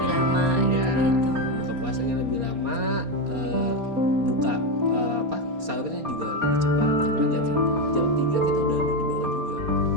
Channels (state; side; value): late; left; 4.3 ms